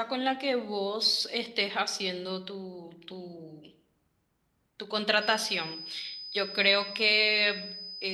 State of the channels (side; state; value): both; identical; correlation 1.00